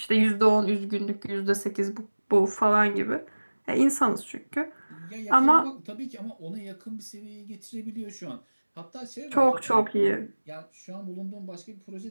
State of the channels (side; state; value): both; inverted; correlation -1.00